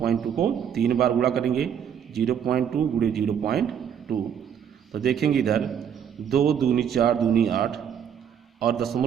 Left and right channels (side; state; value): left; quieter; 8.4 dB